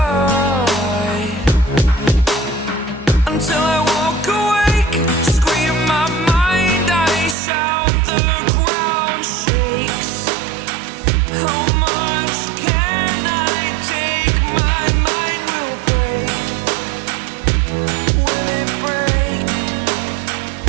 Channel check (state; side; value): drops out; left; at 7.4 s